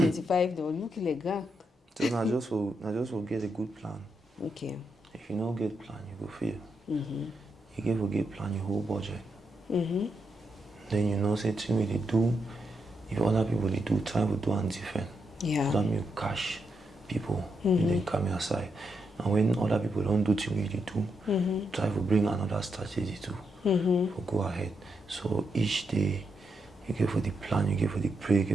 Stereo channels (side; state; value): both; normal; correlation 0.82